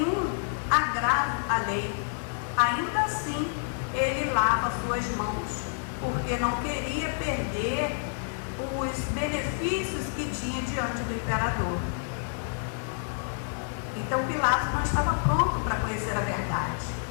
agravo à lei. Ainda assim, ele lava suas mãos, porque não queria perder os benefícios que tinha diante do imperador. Então Pilatos não estava pronto para conhecer a verdade.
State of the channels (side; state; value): right; silent; digital silence